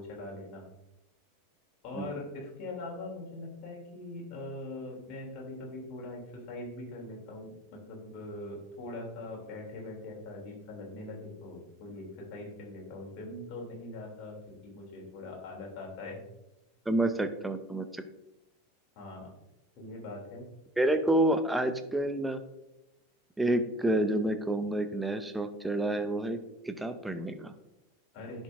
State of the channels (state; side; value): normal; both; correlation 0.53